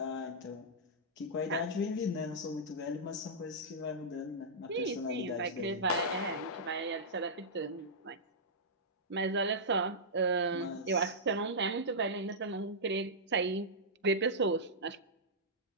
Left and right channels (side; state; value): both; normal; correlation -0.12